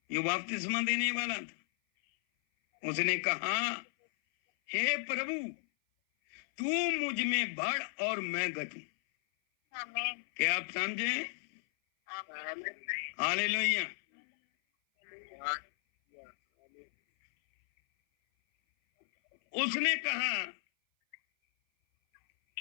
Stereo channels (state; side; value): silent; right; 55 dB below the other